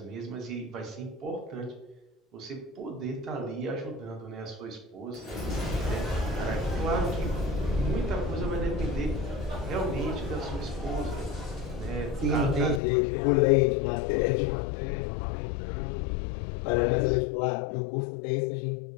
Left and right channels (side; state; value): right; drops out; at 12.8 s